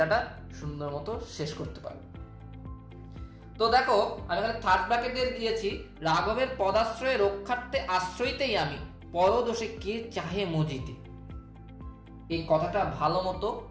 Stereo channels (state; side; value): identical; both; correlation 1.00